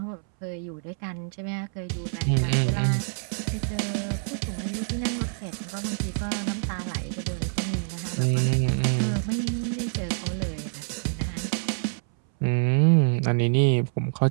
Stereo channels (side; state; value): left; silent; 61 dB below the other